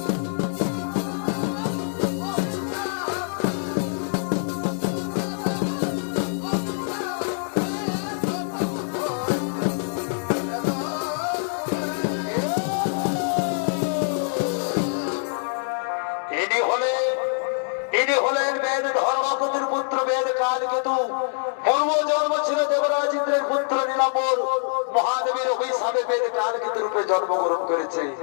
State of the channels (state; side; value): silent; right; 61 dB below the other